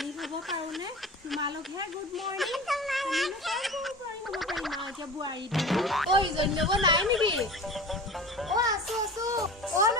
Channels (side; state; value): both; normal; correlation 0.36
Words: হ'ব পাৰো নে তোমালোকহে গুড মৰ্নিং এতিয়া বোৱাৰী ও ইজনী নব নাই নেকি ও আছো ও